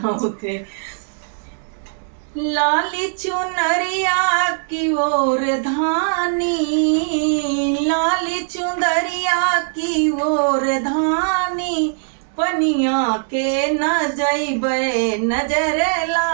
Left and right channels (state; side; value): silent; left; digital silence